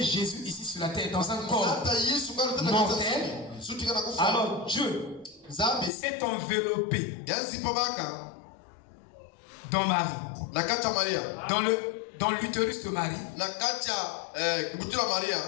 Jésus ici sur la terre dans un corps mortel, alors Dieu s'est enveloppé dans Marie, dans l'utérus de Marie.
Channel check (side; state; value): right; drops out; at 5.9 s